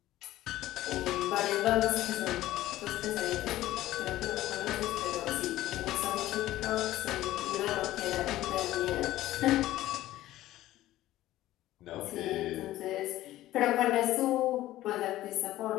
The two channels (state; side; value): quieter; right; 15.1 dB